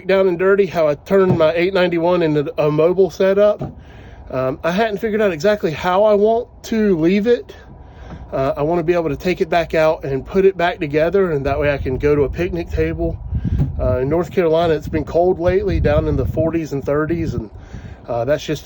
down and dirty, how I turned my 891 into a mobile setup. I hadn't figured out exactly how I want to leave it. I want to be able to take it back out and put it back together, and that way I can go to a picnic table. In North Carolina, it's been cold lately, down in the 40s and 30s, and that's just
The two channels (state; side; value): identical; both; correlation 1.00